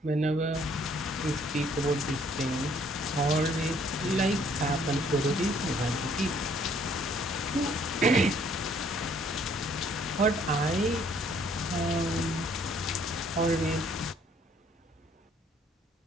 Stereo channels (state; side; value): normal; both; correlation 0.62